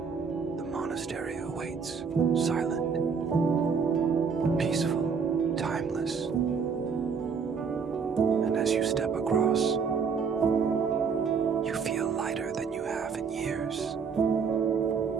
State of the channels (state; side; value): quieter; left; 5.9 dB